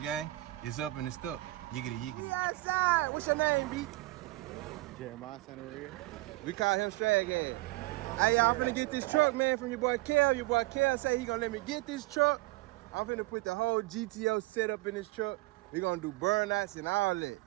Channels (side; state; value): left; quieter; 20.0 dB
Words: gang. It's up and it's stuck. Yiggity, yiggity. We outside. What's your name, B? Jeremiah, son of Red. We call him Straghead. Hey, y'all, I'm finna get this truck, man, from your boy Kel. Your boy Kel say he gonna let me get this truck. I'm finna put the whole GTO setup in this truck. We gonna do burnouts and all that.